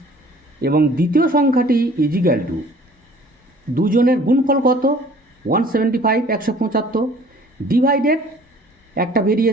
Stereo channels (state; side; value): normal; both; correlation 0.52